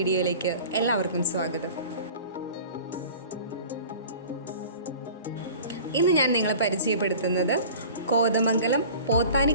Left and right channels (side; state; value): both; inverted; correlation -0.42